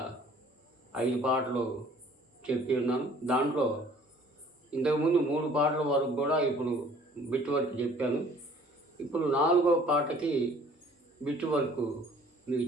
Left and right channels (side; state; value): both; normal; correlation 0.54